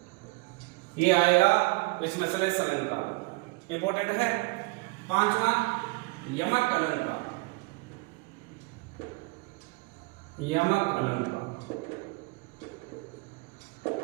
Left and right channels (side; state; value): left; quieter; 26.6 dB